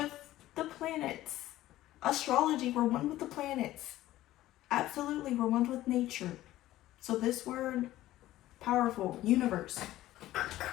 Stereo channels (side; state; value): right; quieter; 15.1 dB